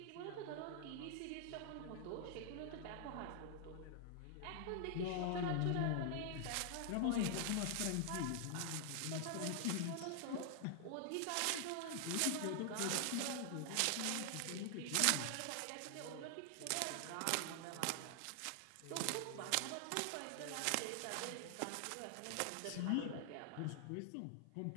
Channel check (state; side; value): different; both; correlation 0.00